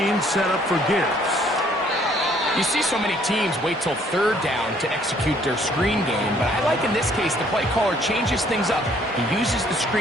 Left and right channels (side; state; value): both; normal; correlation 0.63